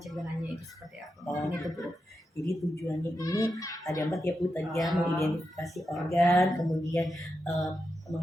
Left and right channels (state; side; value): normal; both; correlation 0.87